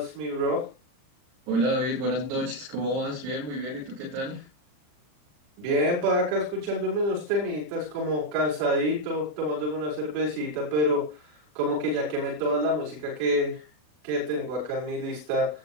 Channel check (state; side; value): late; left; 40 ms